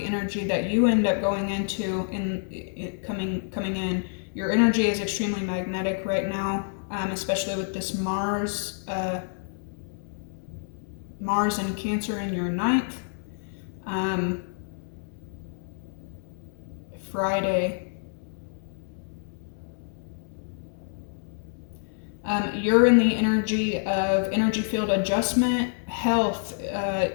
energy that you end up going into coming in. Your energy is extremely magnetic right now, especially with this Mars and Cancer in your 9th. Friday. You're in the energy of energy field adjustment, health,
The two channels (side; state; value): right; silent; digital silence